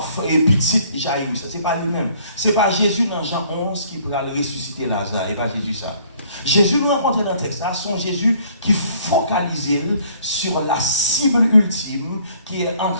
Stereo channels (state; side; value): inverted; both; correlation -0.59